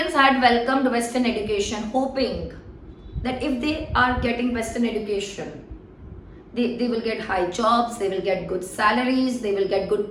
had welcomed Western education, hoping that if they are getting Western education, they will get high jobs, they will get good salaries, they will get good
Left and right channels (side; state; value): both; identical; correlation 1.00